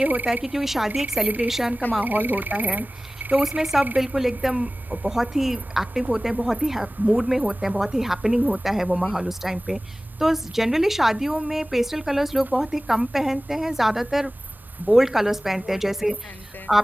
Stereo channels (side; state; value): both; normal; correlation 0.97